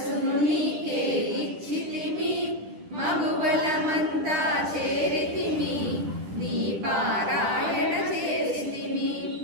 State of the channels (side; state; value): left; late; 10 ms